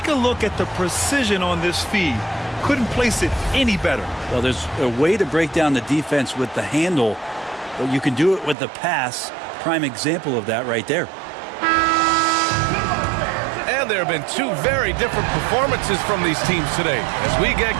a look at the precision on this feed. Couldn't place it any better. Well, there's a way to break down the defense with the handle, but you can do it with the pass. Prime example of that right there. And there have been 2 very different performances from these teams today as we get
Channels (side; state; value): left; drops out; at 8.6 s